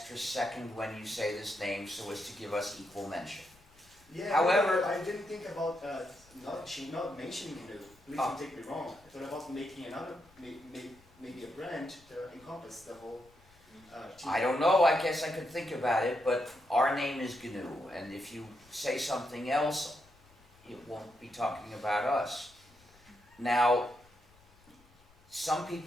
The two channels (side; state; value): left; noise; rumble, 29 dB below the sound